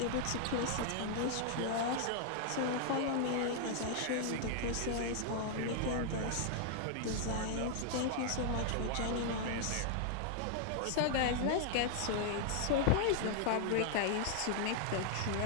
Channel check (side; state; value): both; different; correlation 0.00